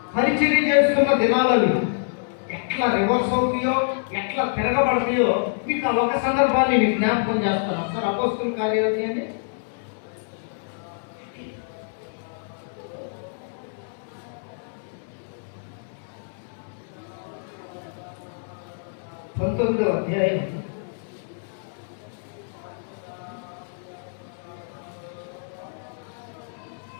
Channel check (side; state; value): right; silent; 61 dB below the other